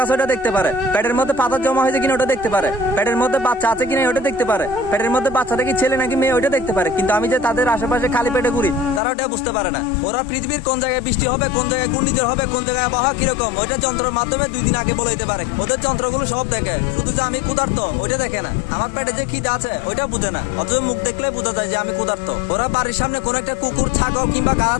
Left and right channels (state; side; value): drops out; right; at 9.0 s